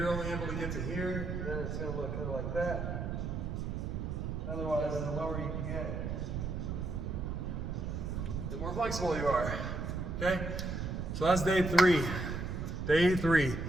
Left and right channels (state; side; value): noise; right; rumble, 3 dB below the sound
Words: only able to get to here, and then it's gonna look kind of like that. Otherwise, the lower you can get, the more flexible you are. Okay? So that's day 3. Day 3.